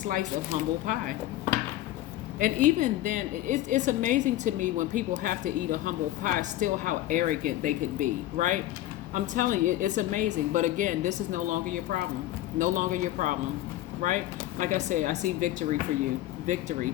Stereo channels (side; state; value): right; quieter; 14.6 dB